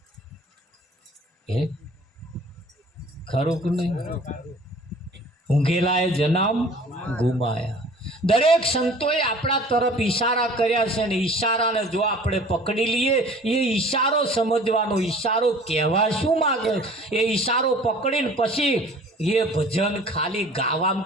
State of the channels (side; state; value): both; normal; correlation 0.48